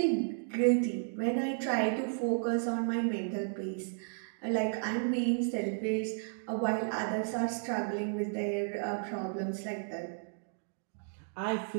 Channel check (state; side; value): silent; left; digital silence